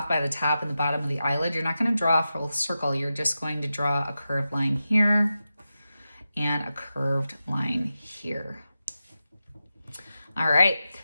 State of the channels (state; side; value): inverted; both; correlation -0.91